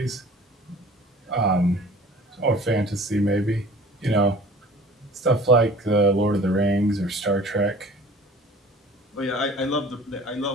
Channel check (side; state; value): both; normal; correlation 0.46